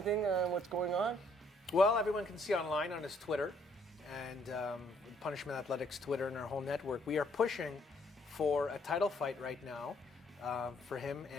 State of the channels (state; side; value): normal; both; correlation 0.66